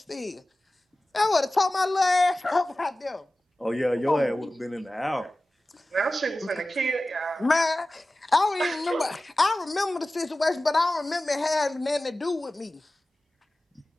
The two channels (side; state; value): both; normal; correlation 0.96